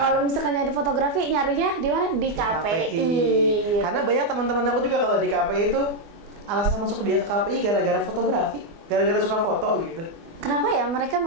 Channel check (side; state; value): left; late; 24 ms